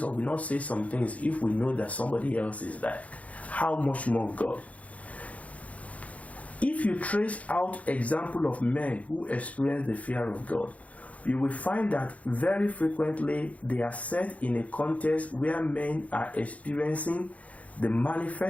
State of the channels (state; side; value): late; right; 0.067 ms